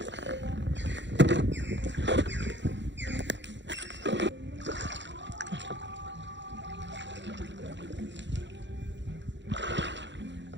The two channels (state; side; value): late; left; 0.53 ms